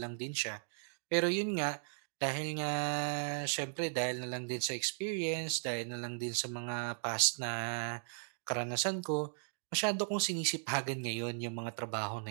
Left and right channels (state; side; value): silent; left; digital silence